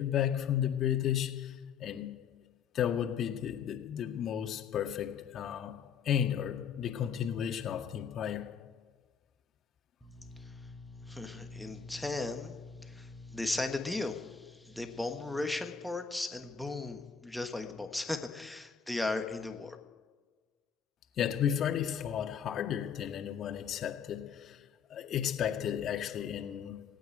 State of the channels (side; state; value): right; quieter; 7.0 dB